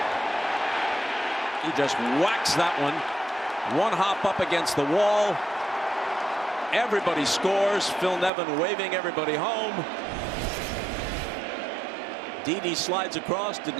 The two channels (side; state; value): left; drops out; at 8.3 s